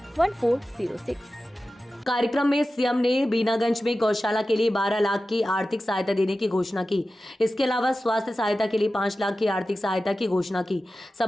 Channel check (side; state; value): both; normal; correlation 0.94